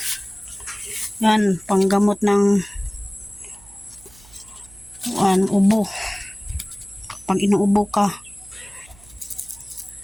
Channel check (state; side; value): noise; right; hum, 24 dB below the sound